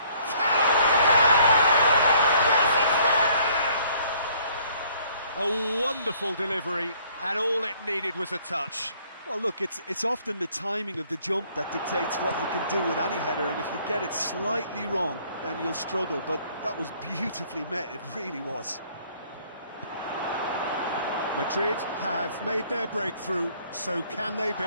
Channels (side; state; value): both; inverted; correlation -0.60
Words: A wonderful delivery, and all it needed was a touch. Well, look, it's often the timing of the jump that dictates what you can do with any header, and if you get it slightly wrong, then you'll struggle, but that was beautifully met, it really was. Madrid have made their breakthrough, so can they